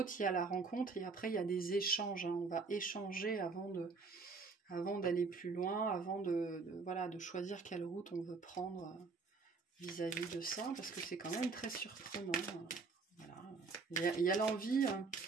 il y a la rencontre et après, il y a des échanges. Hein. On va échanger avant d'aller plus loin, avant de choisir quelle route on veut prendre vis-à-vis de ça, parce que c'est quand même très surprenant. Voilà. Il y a l'envie,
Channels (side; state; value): left; quieter; 4.4 dB